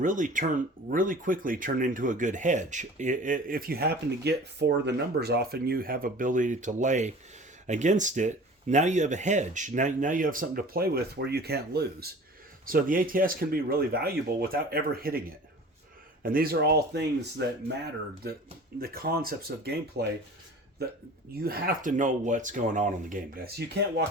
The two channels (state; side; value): normal; both; correlation 0.42